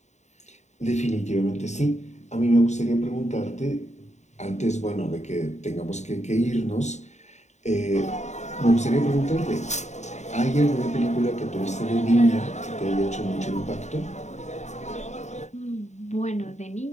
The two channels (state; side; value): late; right; 0.34 ms